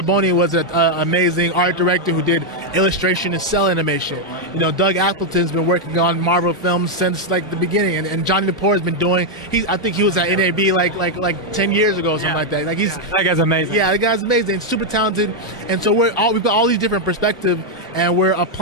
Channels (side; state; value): both; normal; correlation 0.00